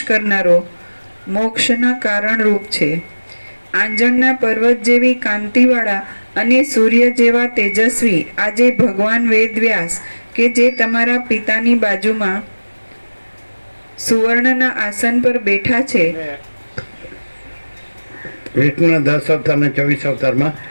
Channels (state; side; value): inverted; both; correlation -1.00